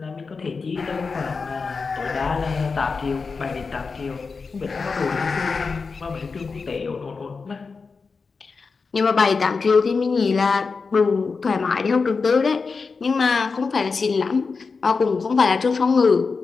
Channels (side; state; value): right; quieter; 4.7 dB